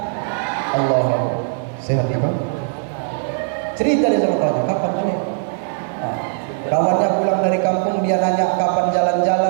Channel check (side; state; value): left; silent; digital silence